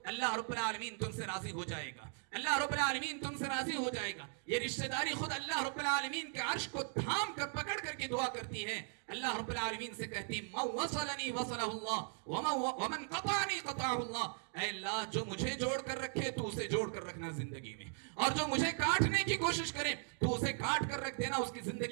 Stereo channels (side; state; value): left; silent; 52 dB below the other